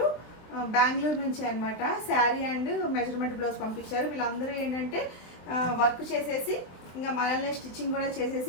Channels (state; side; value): late; right; 23 ms